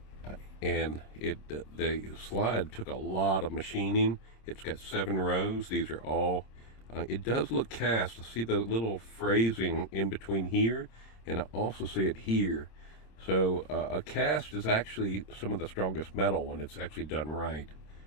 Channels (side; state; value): right; late; 26 ms